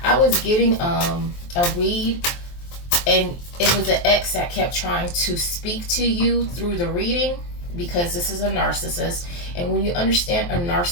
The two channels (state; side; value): late; right; 23 ms